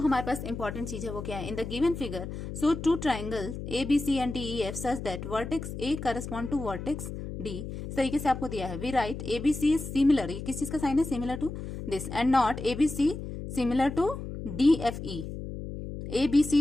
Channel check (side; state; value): left; noise; hum, 8 dB below the sound